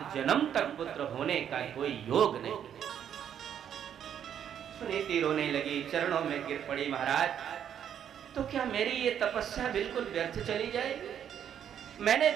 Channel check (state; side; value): quieter; left; 9.2 dB